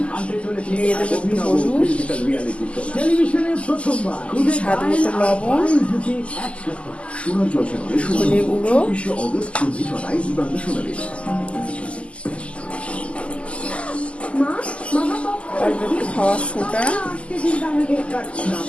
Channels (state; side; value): late; right; 0.058 ms